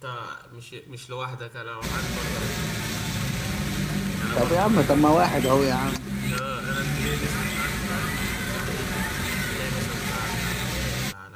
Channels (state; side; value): identical; both; correlation 1.00